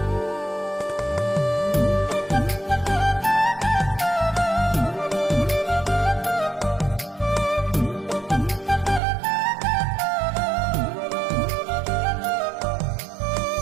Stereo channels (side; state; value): left; drops out; at 9.0 s